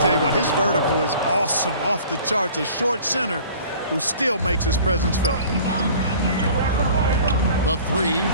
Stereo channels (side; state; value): both; inverted; correlation -0.47